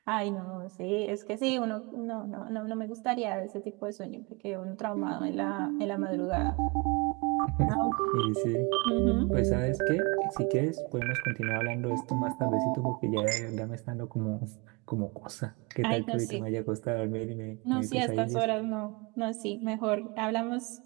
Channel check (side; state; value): left; quieter; 28.8 dB